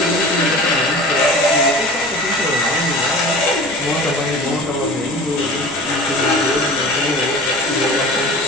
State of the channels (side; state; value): both; normal; correlation 0.39